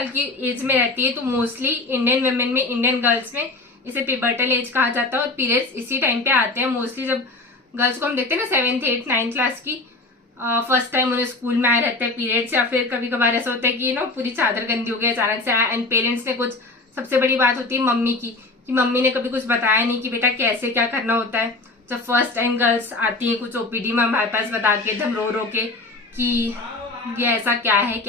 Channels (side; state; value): right; quieter; 3.2 dB